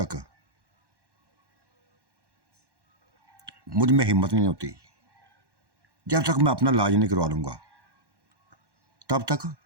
मुझ में हिम्मत नहीं होती, जब तक मैं अपना इलाज नहीं करवा लूँगा, तब तक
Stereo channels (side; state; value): left; late; 1.1 ms